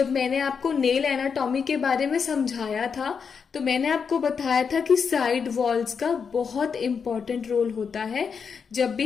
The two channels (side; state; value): right; quieter; 6.1 dB